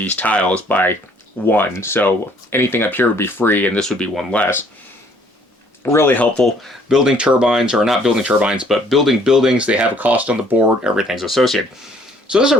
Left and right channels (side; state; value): both; normal; correlation 0.61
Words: tiles by 1. So anything up here would be free, and this would be 1 less. Really helpful. Building turbines, or not building turbines, but building buildings. They have a cost on the board. Everything's associated. So this is